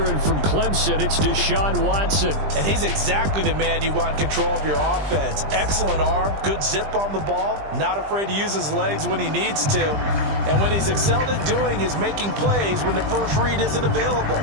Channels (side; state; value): left; late; 20 ms